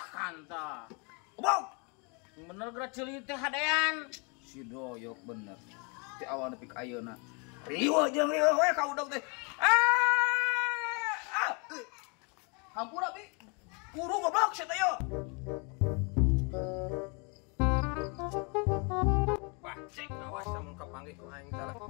Bang. Bener gerak ceuli teh hadean. Si Doyok bener. Ti awal nepi ka ayeuna. Riwa jeung riwa we ka udang teh. Hampura bi. Kuru goblok sia teh yo. Bajek awas sama kepanggih ku aing salah.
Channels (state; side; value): quieter; right; 33.5 dB